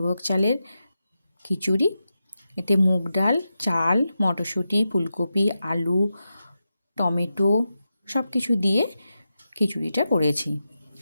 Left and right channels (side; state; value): both; inverted; correlation -0.90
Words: চালের খিচুড়ি, এতে মুগ ডাল, চাল, মটরশুঁটি, ফুলকপি, আলু, টমেটো সব কিছু দিয়ে খিচুড়িটা করেছি।